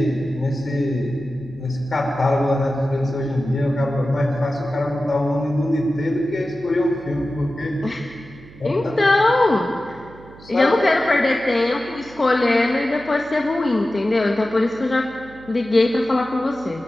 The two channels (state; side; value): noise; right; hum, 21 dB below the sound